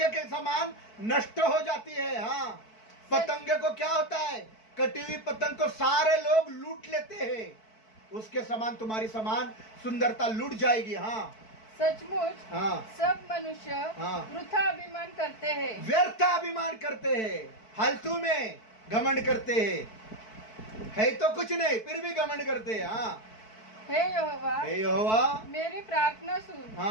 के समान नष्ट हो जाती है। हाँ पतंगे को क्या होता है, कटी हुई पतंग को सारे लोग लूट लेते हैं, उसके समान तुम्हारी समान सुंदरता लूट जाएगी। हाँ सचमुच सब मनुष्य वृथा अभिमान करते हैं, व्यर्थ अभिमान करते हैं, फालतू में घमंड करते हैं, है तो कुछ नहीं फिर भी घमंड करते हैं। हाँ हे यहोवा मेरी प्रार्थना सुन,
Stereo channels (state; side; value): late; right; 4.6 ms